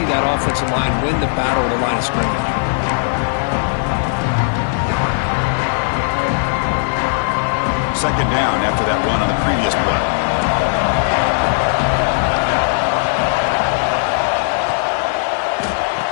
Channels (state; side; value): silent; right; digital silence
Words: that offensive line win the battle at the line of scrimmage. Second down after that run on the previous play.